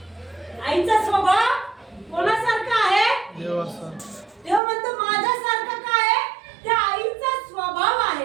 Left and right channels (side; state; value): left; drops out; at 4.6 s